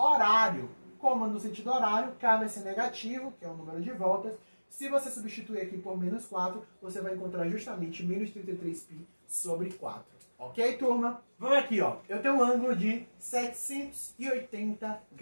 Como no sentido horário, k vai ser negativo, que é o número de voltas. Se você substituir aqui por menos 4, você vai encontrar justamente menos 33π sobre 4. Ok, turma? Vamos aqui, ó. Eu tenho um ângulo de 780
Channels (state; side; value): inverted; both; correlation -1.00